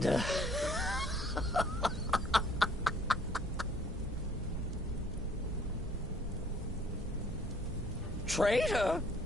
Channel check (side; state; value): both; normal; correlation 0.58